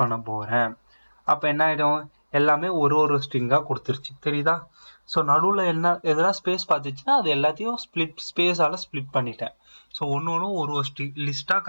பண்ண போறேன். அப்ப என்ன ஆயிடும், எல்லாமே ஒரு ஸ்ட்ரிங்கா கொடுத்துருச்சு, தெரியுதா? ஸோ நடுவில் என்ன எதனா ஸ்பேஸ் பார்த்துச்சுன்னா அது எல்லாத்தையும் ஸ்பேஸால ஸ்பிளிட் பண்ணிட்டேன். ஸோ ஒன்று ஒரு லிஸ்டா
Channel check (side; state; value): both; inverted; correlation -1.00